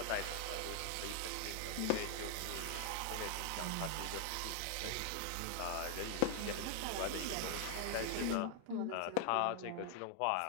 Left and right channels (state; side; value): different; both; correlation 0.00